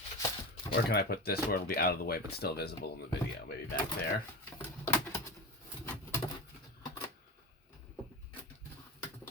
where can I put this where it'll be out of the way but still visible in the video? Maybe back there.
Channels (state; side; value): normal; both; correlation 0.24